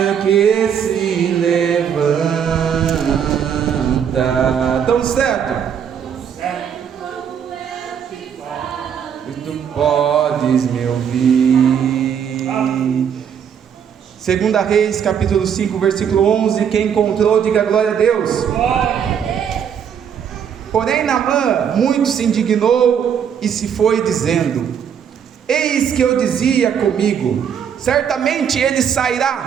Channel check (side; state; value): left; quieter; 8.1 dB